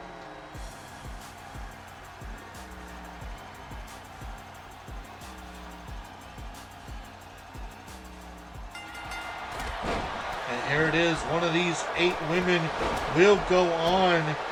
And here it is. One of these 8 women will go on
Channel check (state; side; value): identical; both; correlation 1.00